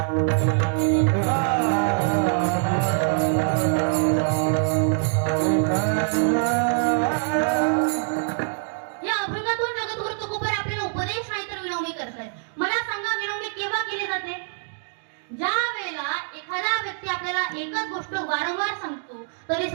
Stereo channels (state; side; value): silent; left; digital silence